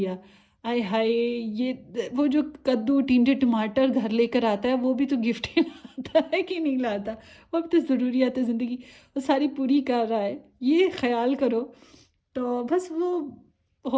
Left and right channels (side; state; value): both; identical; correlation 1.00